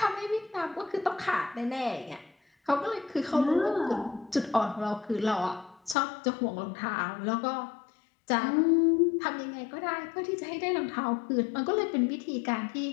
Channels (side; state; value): right; drops out; at 6.0 s